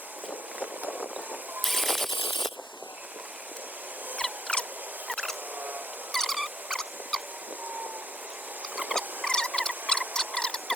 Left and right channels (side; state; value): both; normal; correlation 0.73